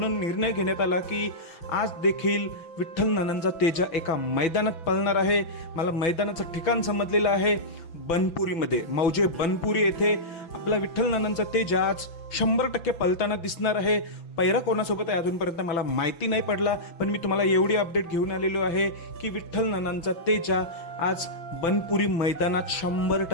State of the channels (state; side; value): late; right; 6.0 ms